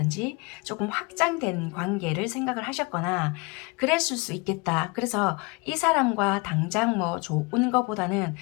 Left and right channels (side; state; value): right; quieter; 28.1 dB